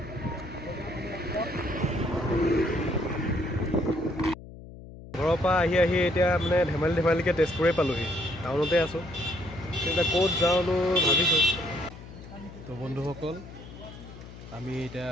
ঘৰৰ পৰা আহি এতিয়া মানে ধেমালিকৈ তেজপুৰে পালোহি। টাউনতে আছোঁ, এতিয়া ক'ত যাওঁনো ভাবিছোঁ। তো বন্ধুসকল, আমি এতিয়া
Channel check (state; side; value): noise; left; hum, 16 dB below the sound